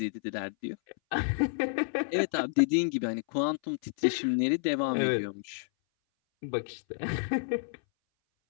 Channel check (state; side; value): silent; right; 58 dB below the other